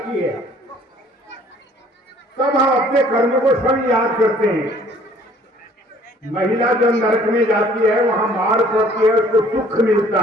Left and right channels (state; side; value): normal; both; correlation 0.57